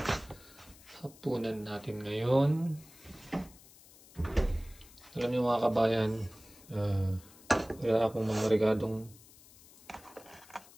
hapunan natin ngayon. Alam niyo mga kabayan, wala akong mga regadong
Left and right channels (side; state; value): left; noise; hiss, 23 dB below the sound